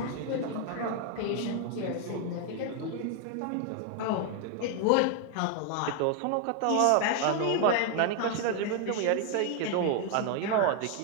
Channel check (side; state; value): both; different; correlation 0.00